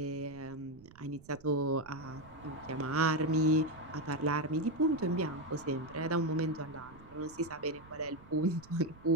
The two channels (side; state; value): right; noise; rumble, 22 dB below the sound